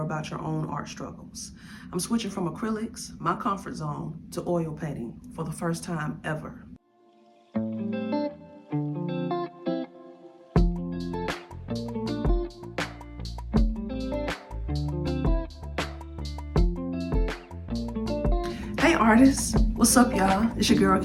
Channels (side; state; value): both; identical; correlation 1.00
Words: your own art struggles. I'm switching from acrylics, my comfort zone, to oil painting for the first time ever. Hey artists, what's up y'all? It's your girl